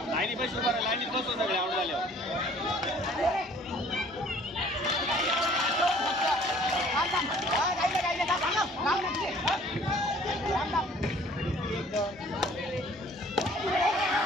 लाईनी बस उभा आहे लाईनीत बसव सगळे आउट झाल्यावर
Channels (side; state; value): both; normal; correlation 0.54